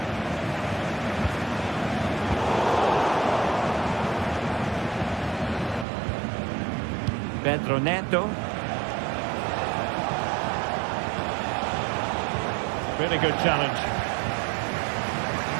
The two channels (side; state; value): left; drops out; at 5.9 s